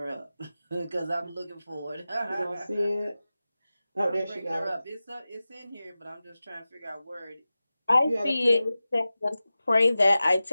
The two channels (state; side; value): inverted; both; correlation -0.95